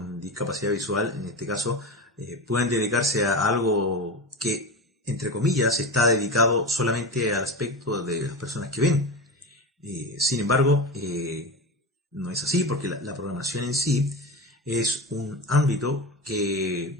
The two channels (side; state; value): both; normal; correlation 0.24